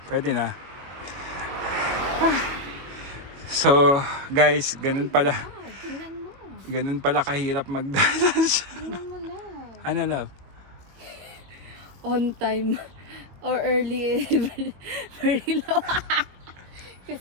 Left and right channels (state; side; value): late; left; 22 ms